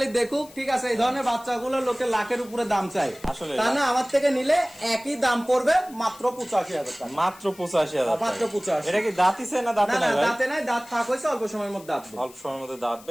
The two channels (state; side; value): noise; left; hiss, 22 dB below the sound